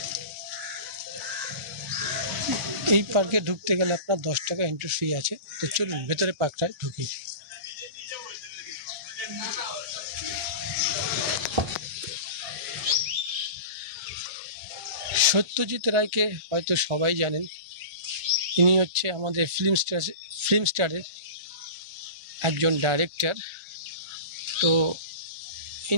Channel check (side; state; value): left; late; 1.4 ms